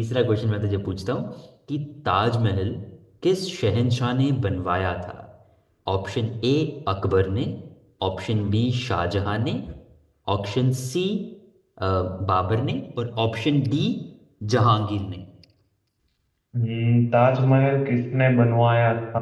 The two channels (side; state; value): both; identical; correlation 1.00